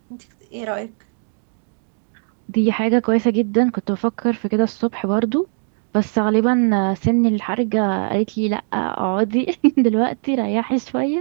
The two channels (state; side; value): silent; left; 66 dB below the other